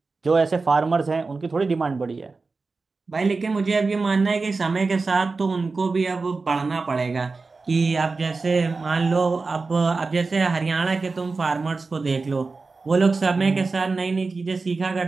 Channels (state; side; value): quieter; left; 4.0 dB